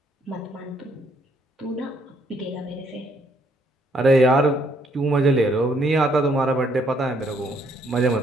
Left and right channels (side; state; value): both; normal; correlation 0.69